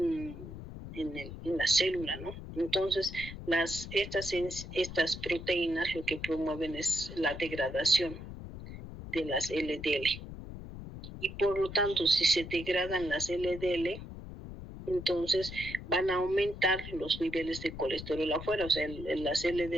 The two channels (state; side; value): noise; left; rumble, 11 dB below the sound